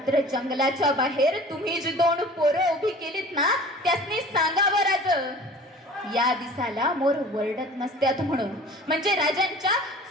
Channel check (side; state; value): both; normal; correlation 0.44